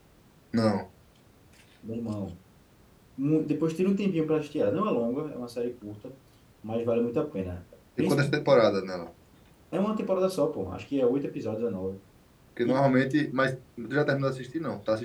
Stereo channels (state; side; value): identical; both; correlation 1.00